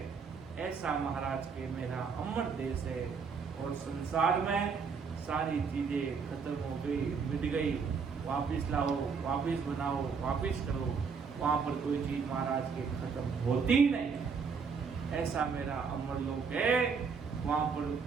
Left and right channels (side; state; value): left; quieter; 5.6 dB